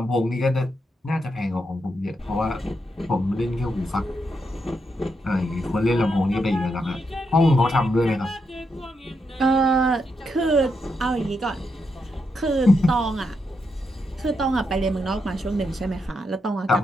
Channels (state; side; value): normal; both; correlation 0.82